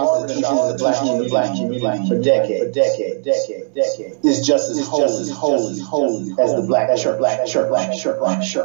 is the black community for decades. Is just as holy as the black church.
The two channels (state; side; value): silent; left; digital silence